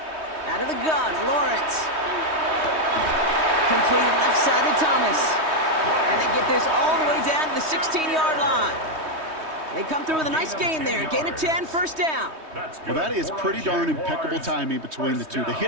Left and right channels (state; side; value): late; left; 3.2 ms